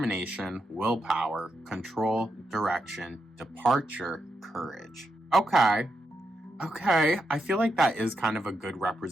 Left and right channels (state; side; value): normal; both; correlation 0.83